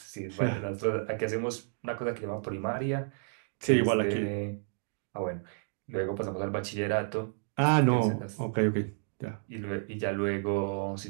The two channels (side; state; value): left; silent; digital silence